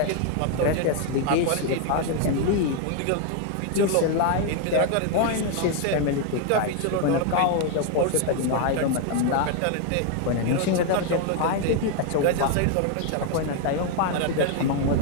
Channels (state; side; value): different; both; correlation 0.01